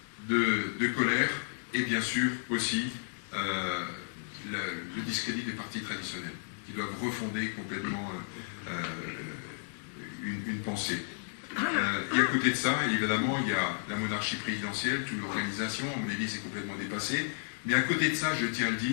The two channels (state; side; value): silent; right; digital silence